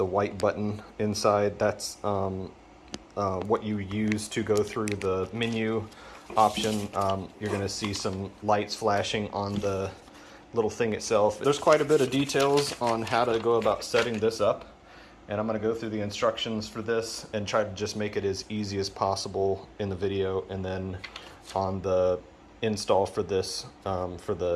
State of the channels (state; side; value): identical; both; correlation 1.00